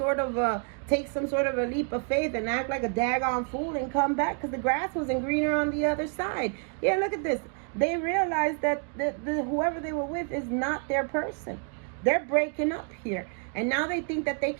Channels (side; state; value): left; quieter; 39.6 dB